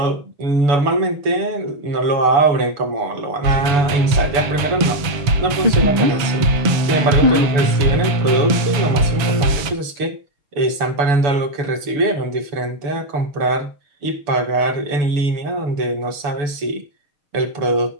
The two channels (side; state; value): left; late; 7.0 ms